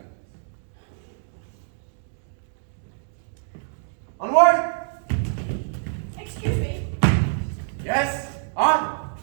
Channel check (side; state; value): left; silent; 61 dB below the other